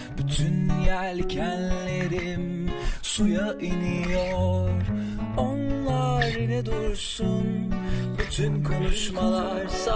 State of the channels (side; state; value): both; identical; correlation 1.00